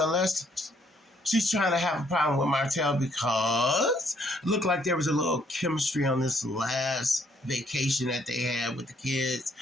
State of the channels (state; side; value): normal; both; correlation 0.68